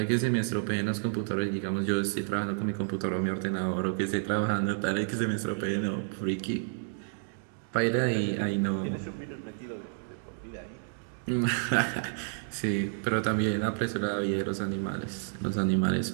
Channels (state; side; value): silent; left; digital silence